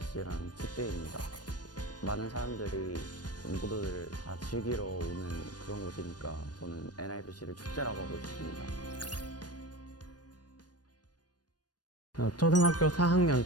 축제입니다. 많은 사람들이 모두들 다 즐기러 오는 그런 곳이니까 저는 NIPC를 축제라고 하고 싶습니다. 초등학교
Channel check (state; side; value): late; right; 0.69 ms